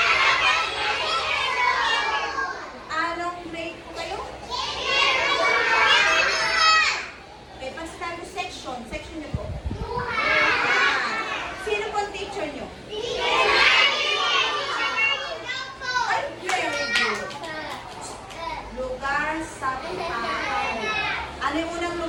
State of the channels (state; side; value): identical; both; correlation 1.00